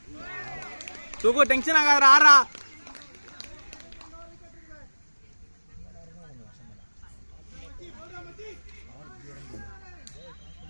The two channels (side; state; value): both; inverted; correlation -1.00